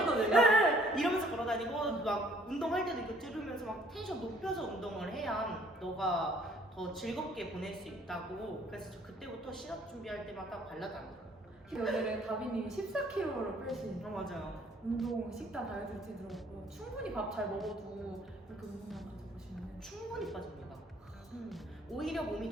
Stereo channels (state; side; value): normal; both; correlation 0.60